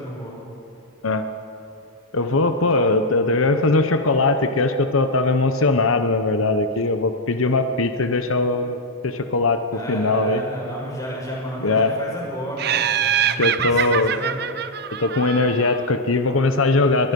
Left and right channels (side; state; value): both; normal; correlation -0.03